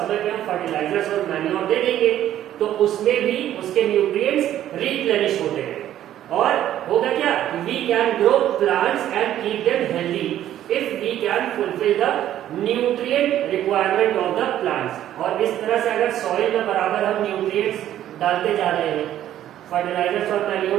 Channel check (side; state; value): left; quieter; 12.0 dB